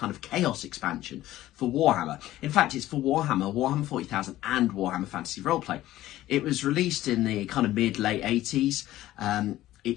of Chaos expansion for Warhammer. In fact, it's for Warhammer, Warhammer 40,000 and Warhammer Fantasy Roleplay. It was released in the kind of mid-late 80s.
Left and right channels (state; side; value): quieter; right; 14.9 dB